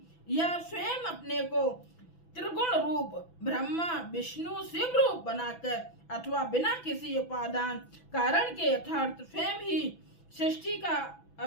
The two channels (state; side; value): late; right; 6.0 ms